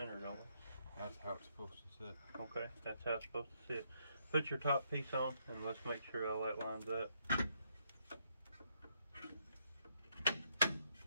don't we? That's how it's supposed to sit. Okay, that's how it's supposed to sit. Put your top piece on and let's make sure all that lines up.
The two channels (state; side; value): inverted; both; correlation -0.74